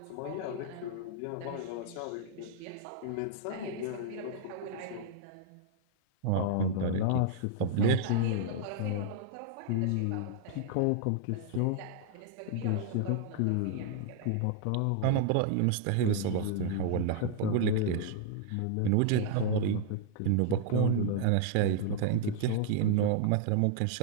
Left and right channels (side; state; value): both; different; correlation -0.01